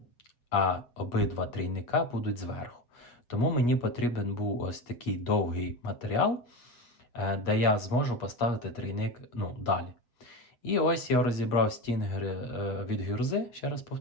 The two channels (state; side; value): late; right; 8.4 ms